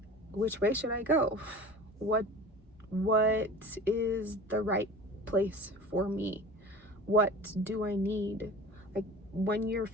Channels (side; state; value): both; normal; correlation 0.38